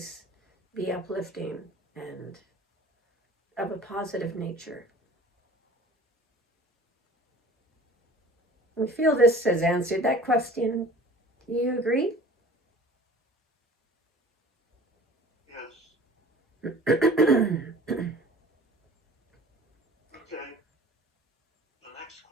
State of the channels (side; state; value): both; normal; correlation 0.46